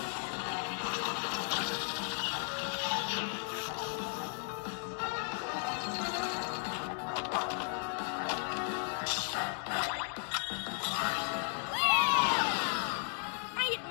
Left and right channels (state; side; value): silent; right; 54 dB below the other